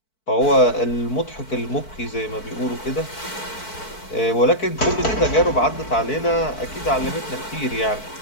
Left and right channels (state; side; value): late; right; 4.5 ms